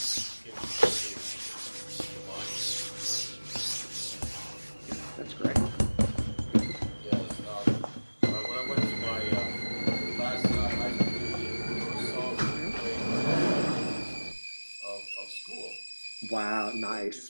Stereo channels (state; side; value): inverted; both; correlation -1.00